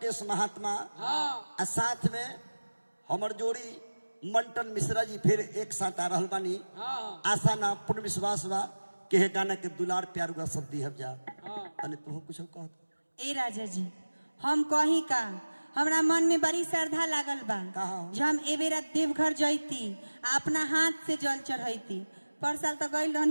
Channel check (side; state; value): both; inverted; correlation -1.00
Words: महात्मा और साथ में हमर जोड़ी मंटन मिश्रा जी फिर एक साथ आ रहल बानी। आशा ना पूर्ण विश्वास बा के हे गाना के दुलार प्यार हुआ सब दी जा तने तू कुछ कह। ए राजा जी हम कही का हमरा मन में बड़ी श्रद्धा लागल बा जो हम ए बेरा देवघर जैती अपना हाथ से जल चढ़ैती। पर साल तो गई